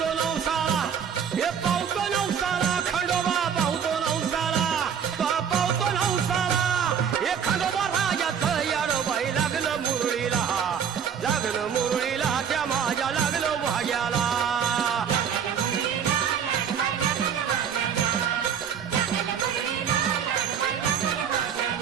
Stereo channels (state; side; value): quieter; left; 7.8 dB